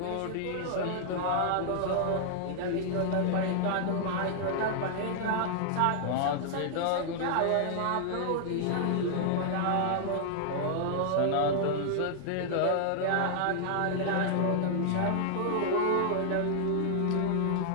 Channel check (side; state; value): both; different; correlation -0.01